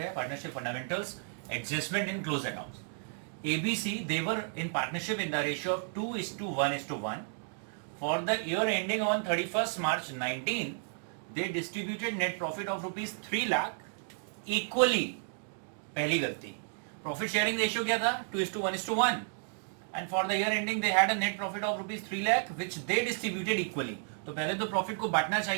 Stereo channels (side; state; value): left; silent; 56 dB below the other